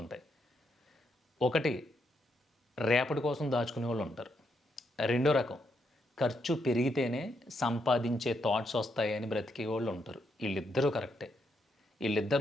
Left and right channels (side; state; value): both; normal; correlation 0.78